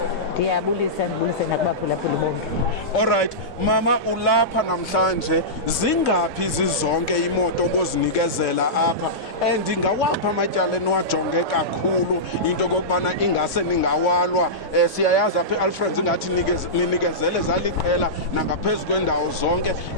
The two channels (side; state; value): both; normal; correlation -0.16